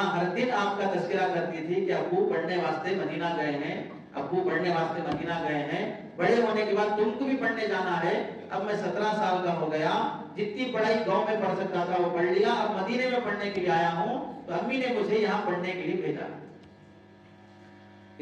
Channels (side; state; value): both; identical; correlation 1.00